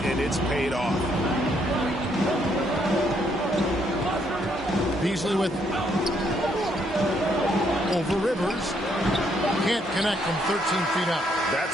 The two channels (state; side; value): normal; both; correlation 0.72